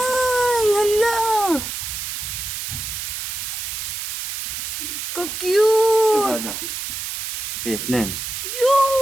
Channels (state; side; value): noise; right; hiss, 5 dB below the sound